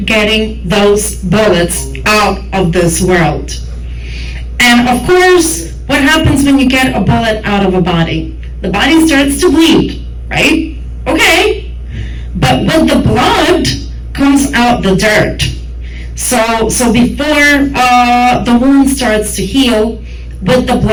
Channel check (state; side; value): identical; both; correlation 1.00